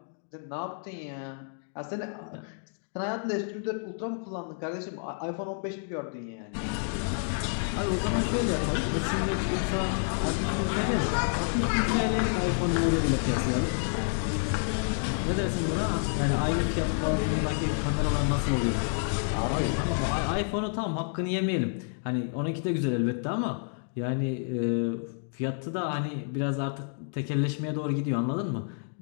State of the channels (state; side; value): silent; right; digital silence